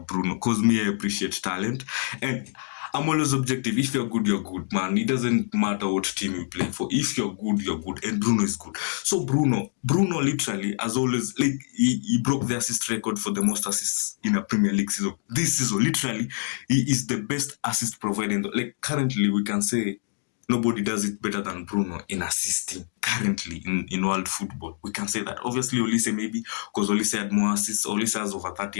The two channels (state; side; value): silent; right; digital silence